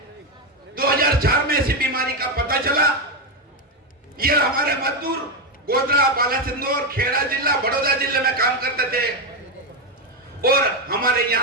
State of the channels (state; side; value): normal; both; correlation 0.08